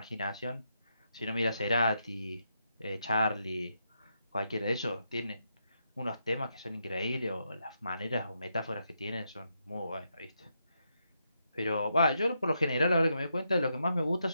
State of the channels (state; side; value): inverted; both; correlation -0.81